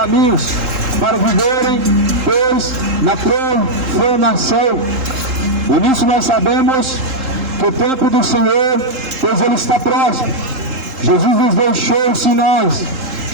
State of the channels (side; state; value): left; late; 3.8 ms